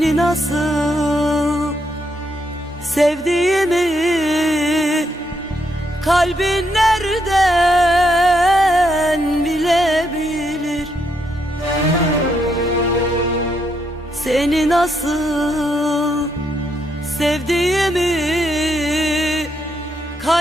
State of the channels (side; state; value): both; normal; correlation 0.77